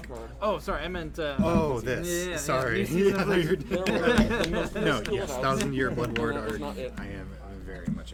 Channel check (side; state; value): both; identical; correlation 1.00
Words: Draw a card. Oh, sorry, I meant. Oh, this. Yeah, Sorry. new season I of thought you were- There were the most No, minuscule yes, house. 1,000-Year Blood Ward No, that was art. not it. I am very much